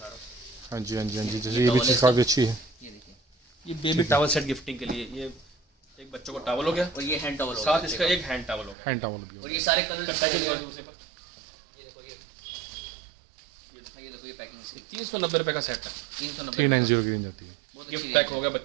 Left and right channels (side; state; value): left; drops out; at 8.8 s